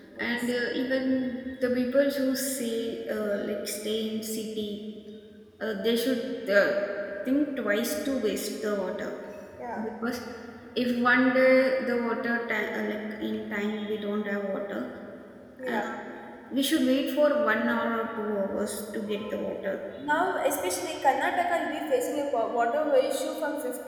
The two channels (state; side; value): identical; both; correlation 1.00